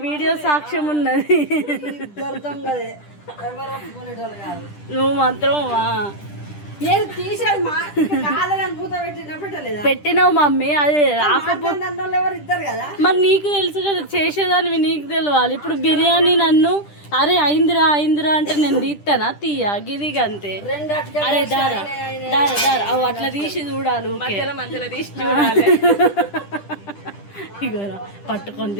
వీడియో సాక్ష్యం ఉన్నది. దొరుకుతాం కదే ఎవరు ఒప్పుకునేటోళ్ళు కాదు నువ్వు మాత్రం నేను తీసేది మా కాదని మూత పెట్టినా పెట్టలేదా పెట్టినావు మమ్మీ. అది రాకపోతే అన్నోళ్ళు ఎవరు ఇద్దరు కదా మరి నీకు తెలుసు కదా, చేసేదానివి నీకు తెలియాలి. ఇప్పుడు బిర్యానీ నన్ను అరే అయిందిరా అయిందిరా అంటే నేను తీస్తానా? తీయ గిదిగా అంతే. రెండు అటుకెళ్ళి అరే దారా దారా దారా అవు అట్లా తీసి చూడాలి. ఊకే మధ్యలో మధ్యలో తీసి చూడాలి. ఇగోరా పట్టుకొని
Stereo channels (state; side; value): late; right; 10 ms